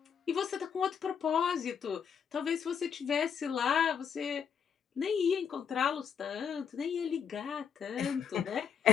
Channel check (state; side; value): quieter; right; 7.2 dB